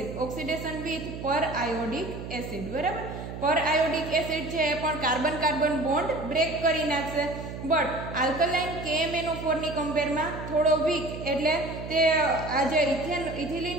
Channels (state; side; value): noise; right; hum, 9 dB below the sound